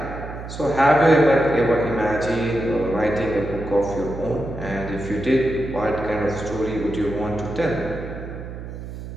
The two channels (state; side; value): noise; right; hum, 10 dB below the sound